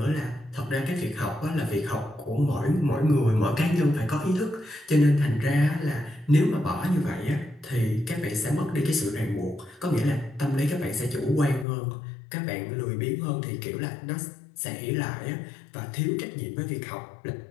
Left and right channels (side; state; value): right; drops out; at 11.7 s